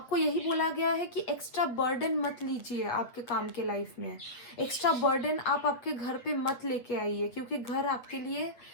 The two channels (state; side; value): late; right; 7.8 ms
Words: यही बोला गया है कि एक्स्ट्रा बर्डन मत लीजिए आपके काम के लाइफ में। एक्स्ट्रा बर्डन आप आपके घर पे मत लेके आइए, क्योंकि घर आपके लिए